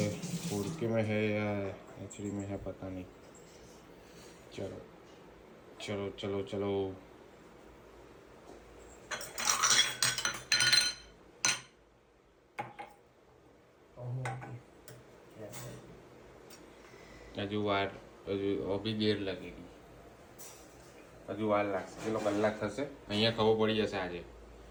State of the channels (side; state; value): both; identical; correlation 1.00